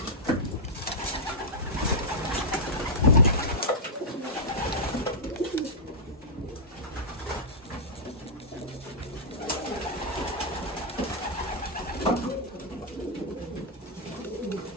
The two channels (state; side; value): normal; both; correlation -0.10